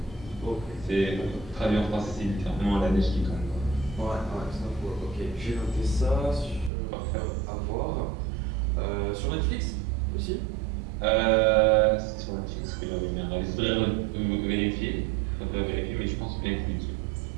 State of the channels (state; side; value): drops out; left; at 6.7 s